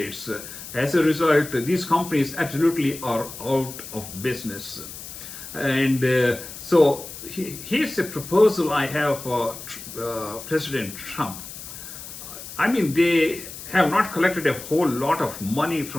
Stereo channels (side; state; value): left; noise; hiss, 12 dB below the sound